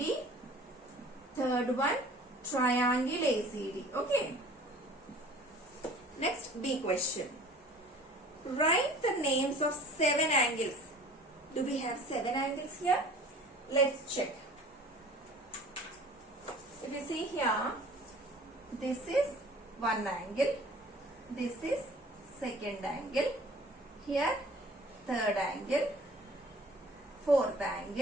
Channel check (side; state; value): both; normal; correlation 0.48